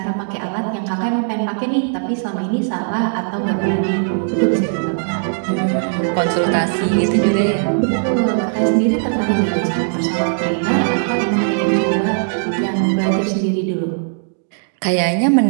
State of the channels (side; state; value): left; silent; digital silence